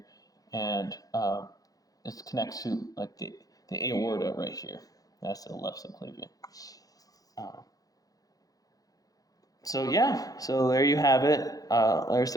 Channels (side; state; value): right; late; 0.17 ms